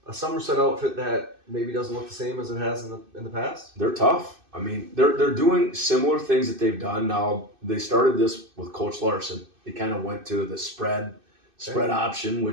a Somerset outfit that maybe doesn't look the same as it has in the past. They're tough. I mean, they're doing similar things that they've done. Now they started this with Coach Larson. They kind of went to the spread option,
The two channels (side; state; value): left; late; 2.6 ms